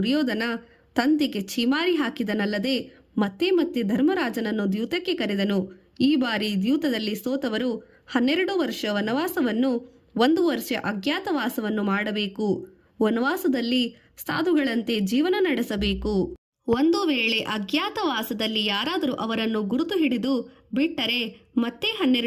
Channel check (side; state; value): both; identical; correlation 1.00